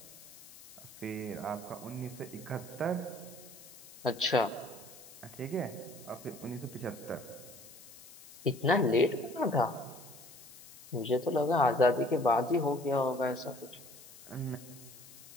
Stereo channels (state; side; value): noise; left; hiss, 19 dB below the sound